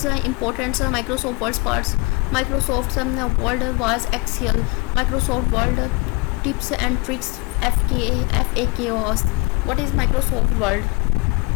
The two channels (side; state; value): right; quieter; 26.9 dB